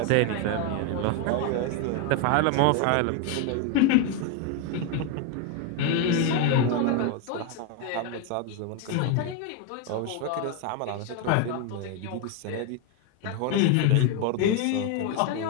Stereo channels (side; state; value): both; different; correlation 0.01